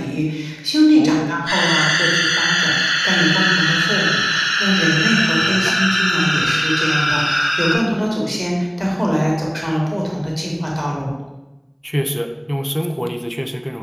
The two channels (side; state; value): both; identical; correlation 1.00